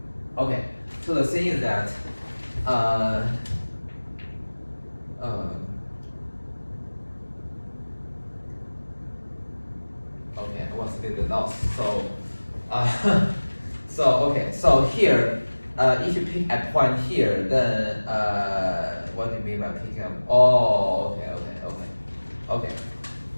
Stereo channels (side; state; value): both; inverted; correlation -1.00